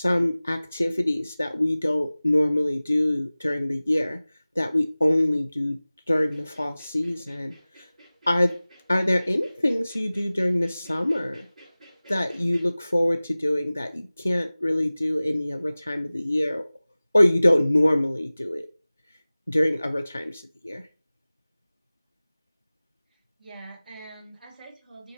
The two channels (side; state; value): both; inverted; correlation -0.98